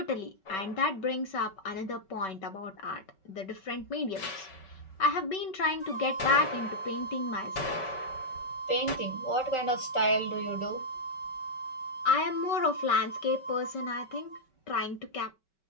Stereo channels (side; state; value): right; late; 5.3 ms